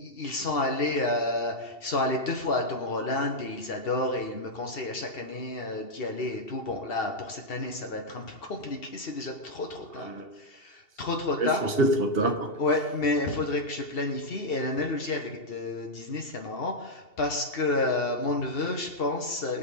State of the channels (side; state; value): right; late; 2.7 ms